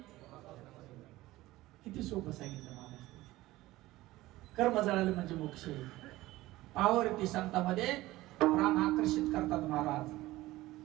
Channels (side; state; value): left; quieter; 17.6 dB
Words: किती सोपं सांगितलं महाराज. कर्म जळाले म्हणजे मोक्ष आहे. पावरती संतांमध्ये प्राण आकर्षित करतात महाराज.